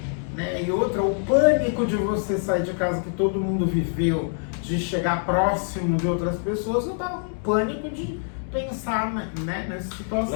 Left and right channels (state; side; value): silent; right; 59 dB below the other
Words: Né? E outra, o pânico de você sair de casa que todo mundo viveu, de chegar próximo de outras pessoas, eu tava com pânico de pensar, né, nessa situação.